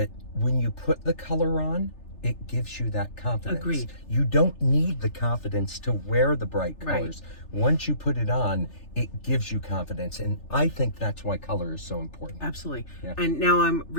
when you put the color on, it gives you that confidence. Agreed. You don't need the confidence to wear the bright Right. colors. Once you put it on, it gives you confidence. And I think that's why color is so important. Absolutely. Yeah. And now I'm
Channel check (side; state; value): right; late; 3.3 ms